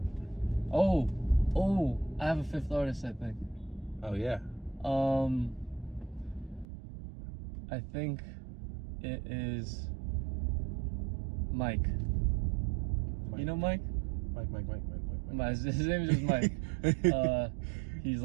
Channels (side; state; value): left; drops out; at 6.7 s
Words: Oh, I have a fifth artist, I think. Oh yeah. I think it is Mike. You know Mike? Mike. His name is just Mike. He's